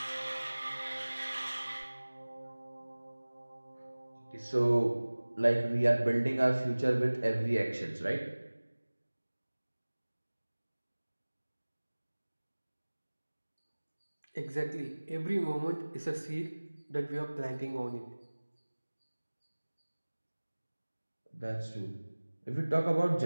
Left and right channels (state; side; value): inverted; both; correlation -1.00